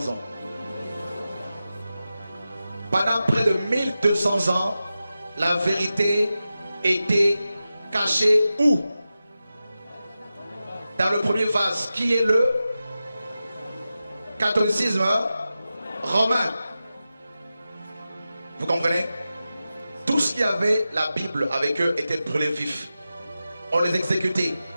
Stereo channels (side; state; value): both; inverted; correlation -0.93